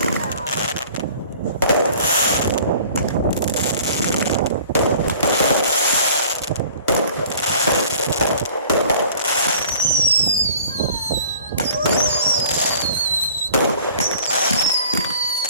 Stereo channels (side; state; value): both; inverted; correlation -0.49